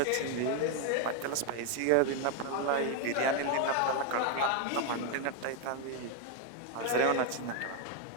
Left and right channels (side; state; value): both; different; correlation 0.01